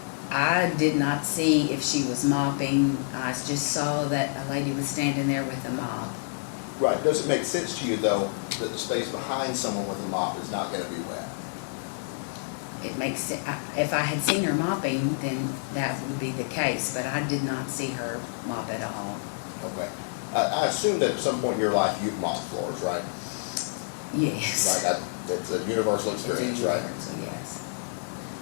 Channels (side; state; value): right; silent; 59 dB below the other